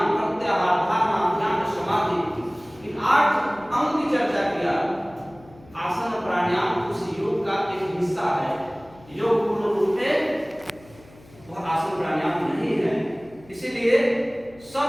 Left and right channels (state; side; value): noise; left; hum, 24 dB below the sound